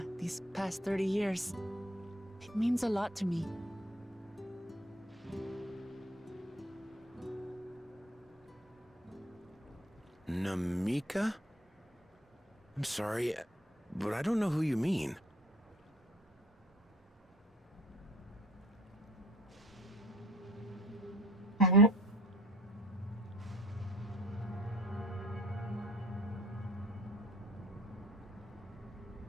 these past 30 years. It means a lot to me. Namika? I'm sorry, but I don't know who you mean.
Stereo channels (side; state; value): both; normal; correlation 0.52